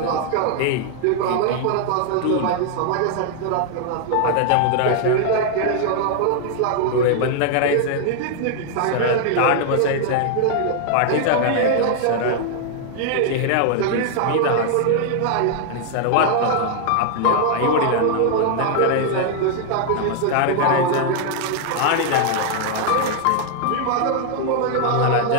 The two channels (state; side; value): different; both; correlation 0.00